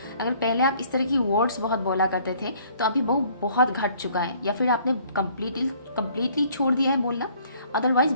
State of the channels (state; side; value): inverted; both; correlation -0.59